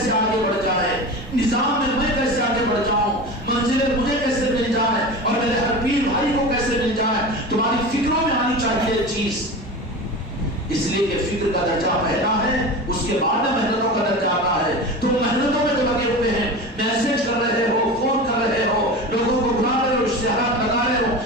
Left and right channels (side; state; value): both; normal; correlation 0.29